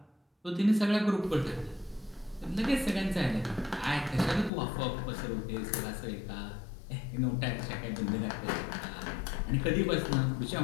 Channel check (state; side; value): drops out; right; at 4.5 s